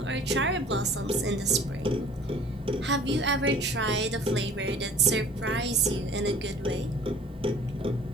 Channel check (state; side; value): normal; both; correlation 0.49